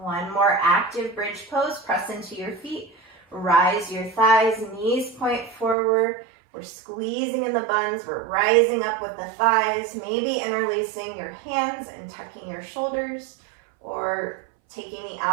more active bridge pose. Press into your feet. Rise your thighs. Knees point forward. We're squeezing in the buns. We're rising up with the thighs. Maybe interlacing your hands and tucking your shoulders. Or taking the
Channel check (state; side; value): drops out; left; at 5.8 s